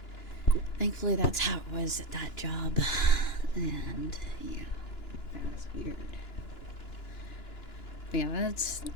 thankfully that's how it was at that job. And yeah, that was weird. But yeah,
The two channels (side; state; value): right; late; 2.9 ms